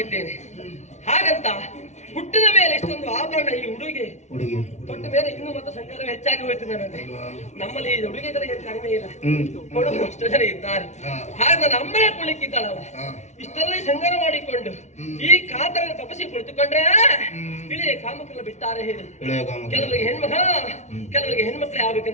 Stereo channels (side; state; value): right; late; 0.33 ms